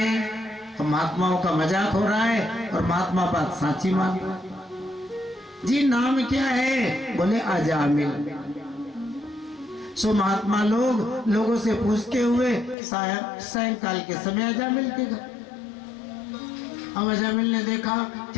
तो महात्माओं का मजाक हो रहा है और महात्मा बात साची मान रहा। जी नाम क्या है? बोले अजामिल। सो महात्मा लोगों से पूछते हुए सायंकाल के समय अजामिल के घर। अब अजामिल ने देखा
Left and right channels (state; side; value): drops out; right; at 12.8 s